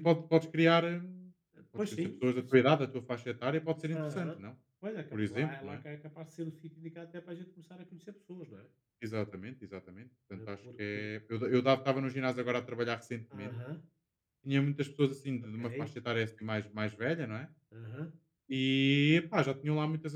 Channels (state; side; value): identical; both; correlation 1.00